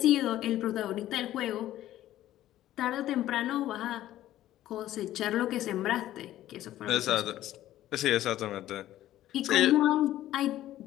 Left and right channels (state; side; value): quieter; right; 13.7 dB